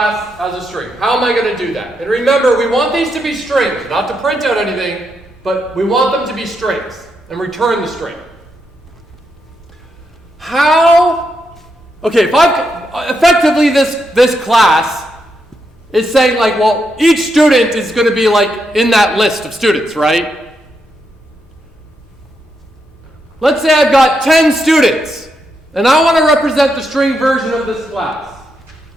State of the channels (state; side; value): normal; both; correlation 0.82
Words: as a string. How am I going to do that? And remember, we want these to be strings, not to print out anything, but we want them to be strings and return the string. Okay, if effectively this class is saying like, well, each student is going to be like in that list of students, right? Let's say I've got 10 students, and I want to represent the string version of this class,